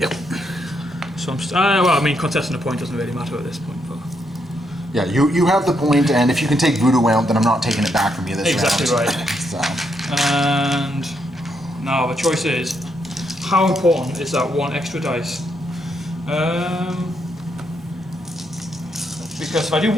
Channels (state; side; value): normal; both; correlation 0.78